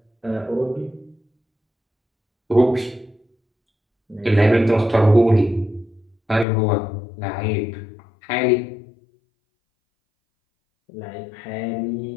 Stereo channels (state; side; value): drops out; right; at 6.5 s